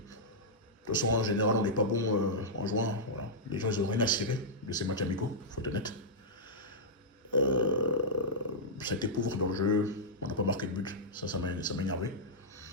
toute façon, en général, on n'est pas bon en juin. Voilà. Les gens, ils n'ont rien à cirer de ces matchs amicaux, il faut être honnête. Ça a été pauvre dans le jeu, on n'a pas marqué de but, ça m'a énervé.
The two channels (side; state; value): both; normal; correlation -0.09